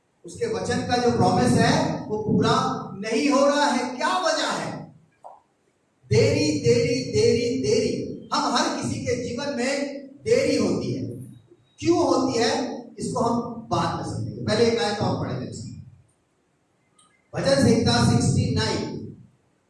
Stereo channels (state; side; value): identical; both; correlation 1.00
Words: उसके वचन का जो प्रॉमिस है वो पूरा नहीं हो रहा है। क्या वजह है? देरी देरी देरी देरी। हम हर किसी के जीवन में देरी होती है। क्यों होती है इसको हम बाद में समझेंगे। पहले एक आयत और पढ़ेंगे। भजन संहिता 69,